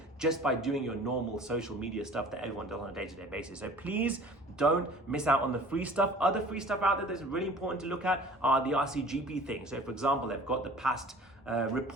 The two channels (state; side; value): normal; both; correlation 0.46